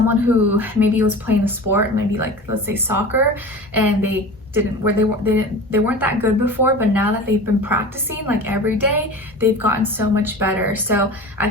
who maybe was playing a sport, maybe like, let's say soccer, and they weren't that good before, but now that they've been practicing like every day, they've gotten so much better. So I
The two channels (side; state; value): both; normal; correlation 0.35